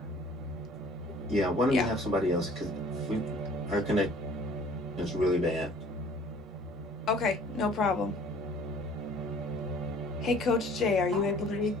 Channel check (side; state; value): both; normal; correlation 0.52